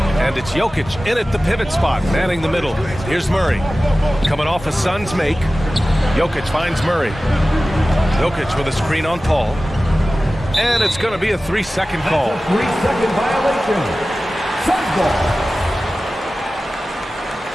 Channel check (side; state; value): both; normal; correlation 0.96